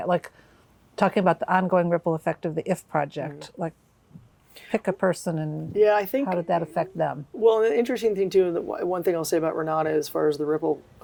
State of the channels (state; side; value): identical; both; correlation 1.00